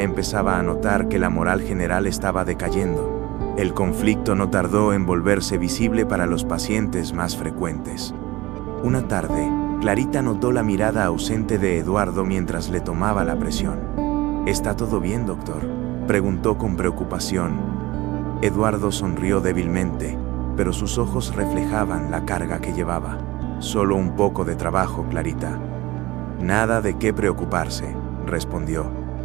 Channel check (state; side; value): quieter; left; 19.6 dB